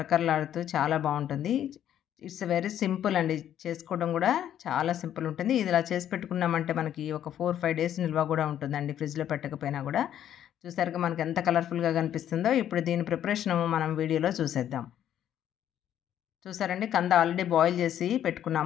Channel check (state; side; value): quieter; right; 10.6 dB